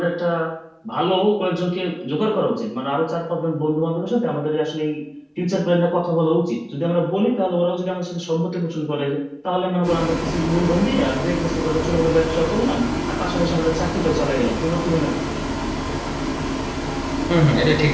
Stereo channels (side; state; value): both; identical; correlation 1.00